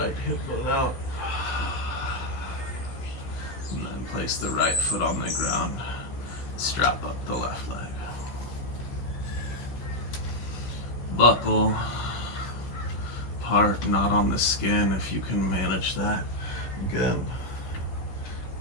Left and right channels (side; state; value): right; late; 16 ms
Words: hip bone out, and then place the right foot on the ground. Strap up the left leg. Buckle, part not on the skin if you can manage that. Again,